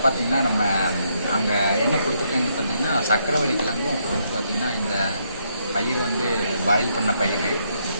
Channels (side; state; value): both; inverted; correlation -0.75